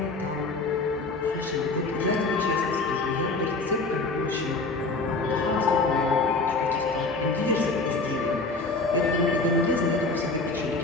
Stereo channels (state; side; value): quieter; right; 3.5 dB